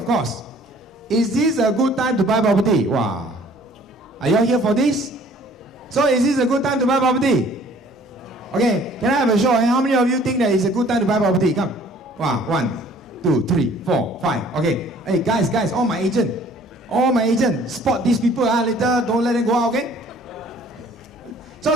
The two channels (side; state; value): both; normal; correlation 0.55